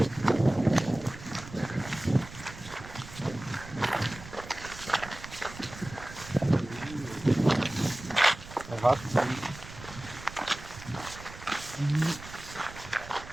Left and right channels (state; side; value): noise; right; rumble, 15 dB below the sound